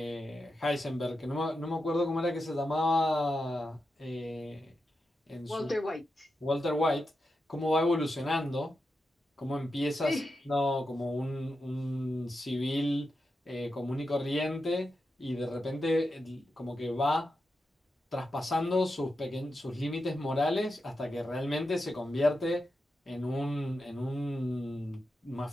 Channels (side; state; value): both; normal; correlation 0.88